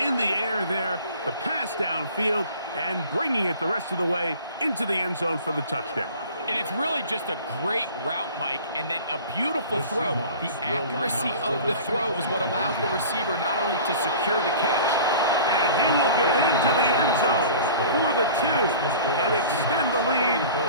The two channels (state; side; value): inverted; both; correlation -0.43